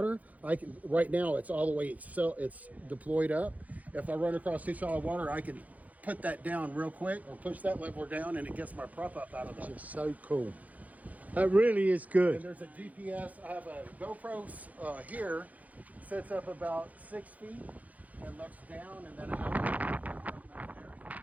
I can. Right now, it's all the way. It's deployed up. If I run across too shallow water, I can put that down real quick or push that lever down, and it gets my prop up out of the. Just so cool. That really is And good. there's a GPS. I have a GoPro here, sits up about 6 feet and looks down, and then I have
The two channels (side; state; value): left; late; 0.075 ms